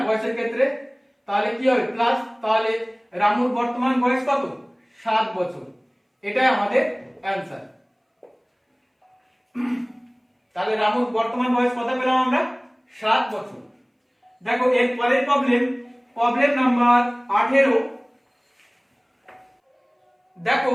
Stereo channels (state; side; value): identical; both; correlation 1.00